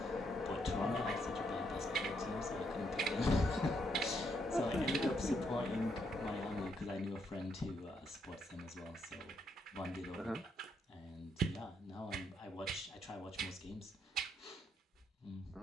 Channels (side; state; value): both; normal; correlation 0.76